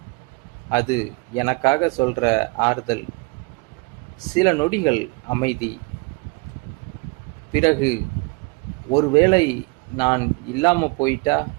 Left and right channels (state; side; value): quieter; left; 29.4 dB